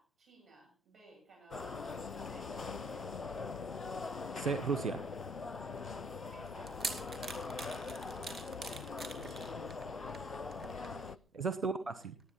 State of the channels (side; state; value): both; normal; correlation 0.62